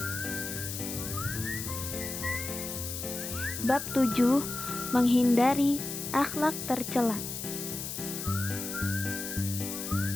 bab 7, menghindari akhlak tercela.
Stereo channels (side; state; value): left; noise; hiss, 6 dB below the sound